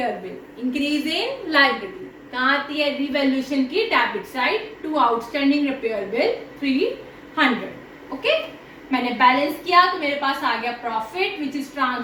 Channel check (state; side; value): identical; both; correlation 1.00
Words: bill, increase in liability, कहाँ आती है, रिवैल्यूएशन की debit side to outstanding repair bill 300। Okay, मैंने बैलेंस किया तो मेरे पास आ गया profit which is